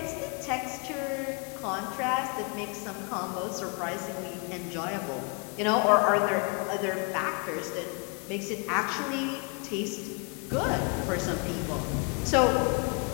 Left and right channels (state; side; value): quieter; right; 35.3 dB